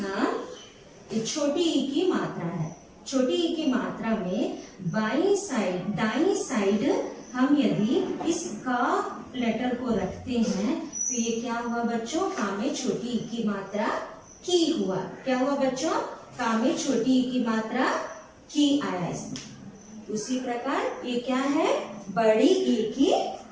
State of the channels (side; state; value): both; identical; correlation 1.00